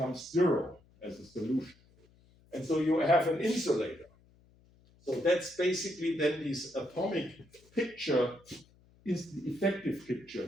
zero as a solution. And so you have an insulator. So that's basically then this atomic picture is the effective picture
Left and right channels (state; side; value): noise; left; hum, 29 dB below the sound